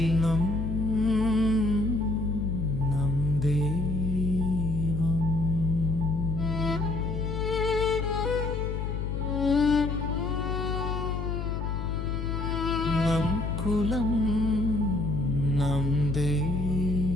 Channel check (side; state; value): left; noise; hum, 2 dB below the sound